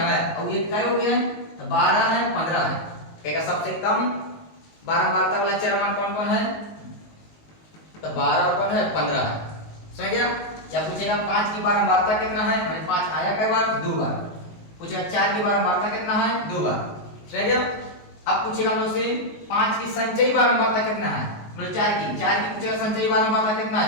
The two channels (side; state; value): right; late; 19 ms